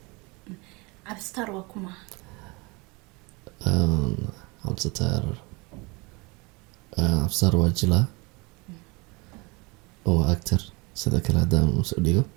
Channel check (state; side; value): quieter; left; 27.0 dB